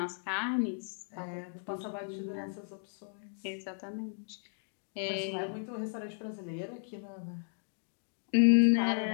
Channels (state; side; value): silent; right; digital silence